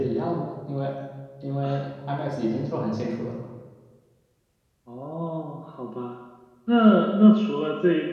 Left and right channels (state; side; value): identical; both; correlation 1.00